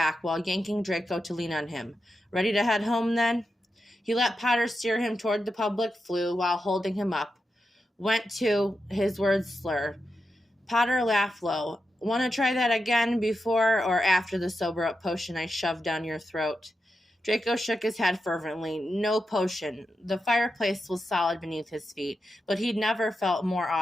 while yanking Draco to lean on him. "Ready to head home, then?" He let Potter steer him toward the public flue while holding him up. Went to, his words slur. Potter laughed low. "Want to try that again before or after the sober-up potion I shoved down your throat?" Draco shook his head fervently. No potion. The fireplace was solid beneath his feet, but he'd never felt more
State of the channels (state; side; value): normal; both; correlation 0.88